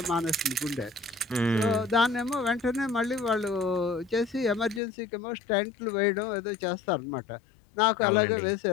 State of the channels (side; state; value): right; drops out; at 4.8 s